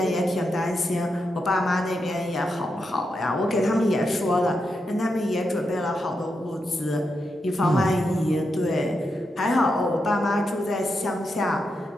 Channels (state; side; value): normal; both; correlation 0.85